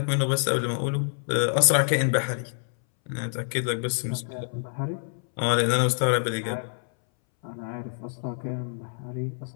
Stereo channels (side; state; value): right; silent; 60 dB below the other